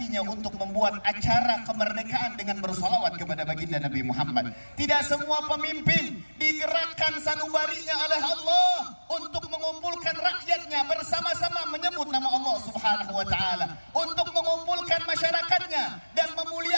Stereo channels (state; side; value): inverted; both; correlation -1.00